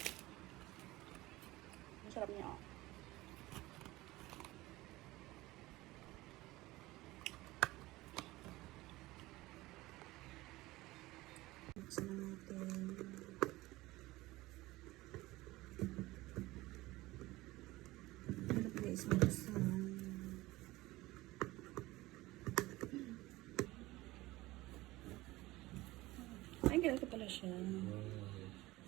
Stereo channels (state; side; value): quieter; left; 19.1 dB